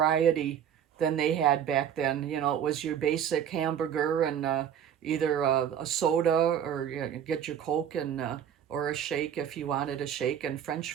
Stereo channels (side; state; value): left; quieter; 9.2 dB